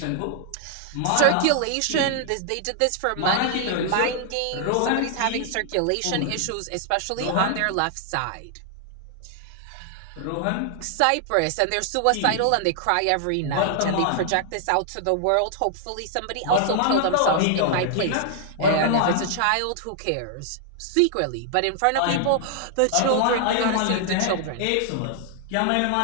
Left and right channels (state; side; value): different; both; correlation -0.01